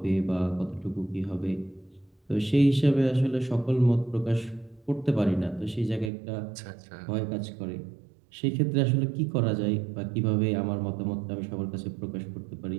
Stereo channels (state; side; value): drops out; left; at 6.1 s